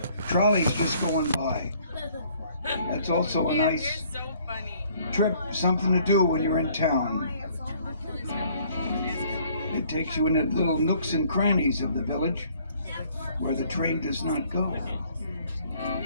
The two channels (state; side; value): inverted; both; correlation -0.60